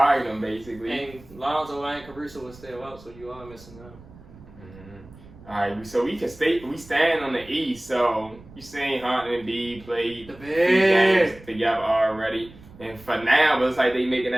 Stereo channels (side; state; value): right; noise; rumble, 21 dB below the sound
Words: them basically. And Lonzo and Caruso was still out, so you are missing out. All right, so we stand on the East. So you seen Harden and B play The 3 games together already, and for now, it looks like they making